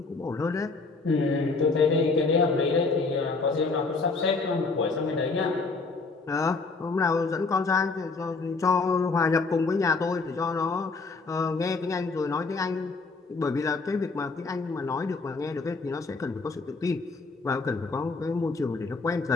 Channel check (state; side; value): quieter; right; 4.0 dB